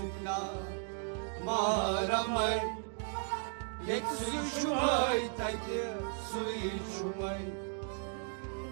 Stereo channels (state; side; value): silent; left; 54 dB below the other